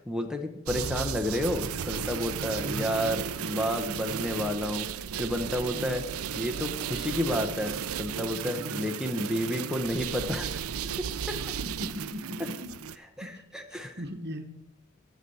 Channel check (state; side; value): normal; both; correlation 0.57